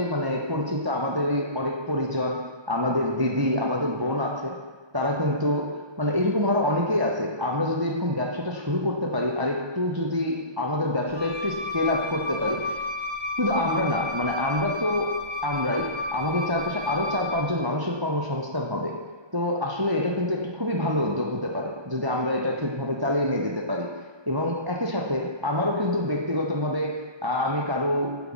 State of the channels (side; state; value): left; late; 1.2 ms